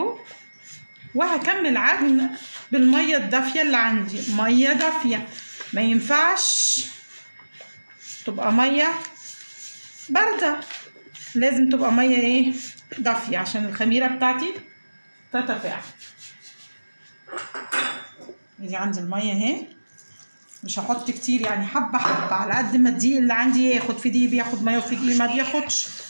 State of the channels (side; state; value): both; inverted; correlation -1.00